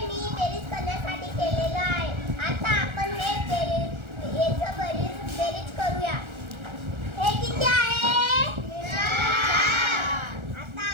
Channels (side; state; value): left; late; 1.4 ms